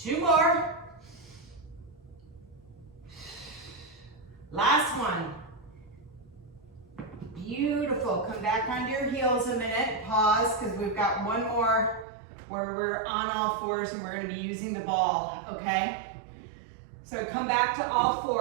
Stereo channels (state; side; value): drops out; left; at 12.1 s